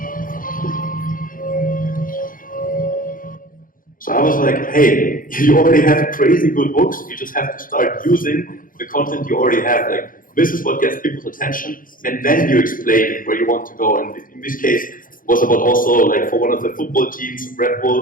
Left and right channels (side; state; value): right; late; 0.40 ms